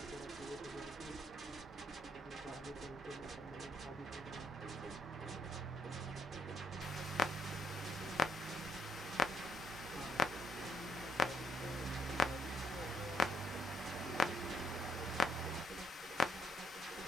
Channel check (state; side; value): normal; both; correlation 0.74